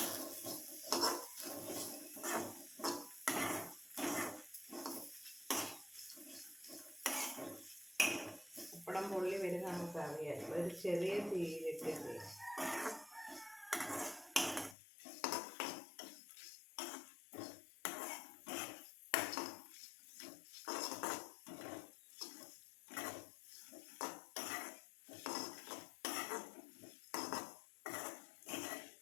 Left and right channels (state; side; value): drops out; right; at 14.8 s